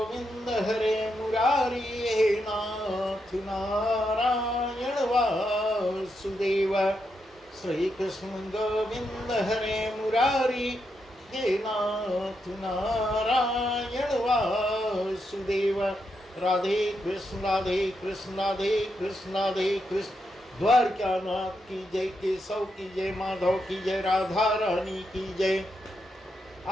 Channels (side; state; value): both; normal; correlation 0.83